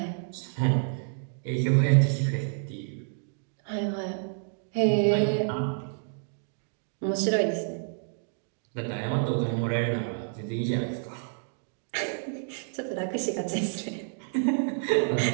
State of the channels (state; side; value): silent; left; digital silence